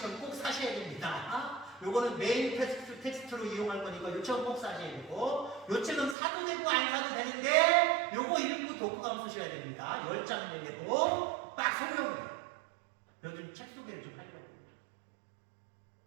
꼭 사셔야 됩니다. 요거는 메인 텍스트로 이용할 거니까 요 책은 꼭 사셔야 되고 요 책은 사도 되고 안 사도 되는데 요거 읽고 독후감 쓰셔야 됩니다. 10장 내고 딱 설명해요. 요즘 책 소개를 좀 하려고.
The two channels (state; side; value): drops out; left; at 6.2 s